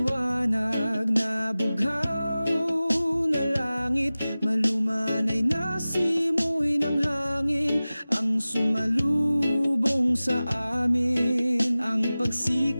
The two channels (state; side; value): inverted; both; correlation -0.97